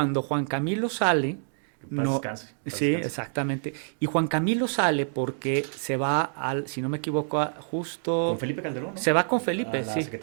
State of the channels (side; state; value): left; silent; digital silence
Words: Juan Camilo sale. Que paz descanse. Sí, exactamente. Y Juan Camilo sale porque se va si no me equivoco, justo... Con Felipe Calderón, ¿no? Se va con Felipe, a la